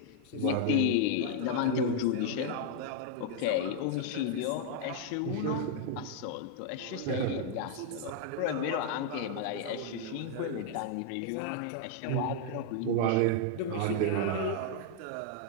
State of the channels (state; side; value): different; both; correlation -0.01